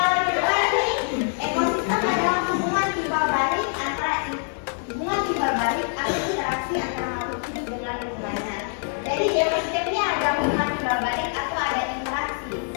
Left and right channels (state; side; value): silent; right; 56 dB below the other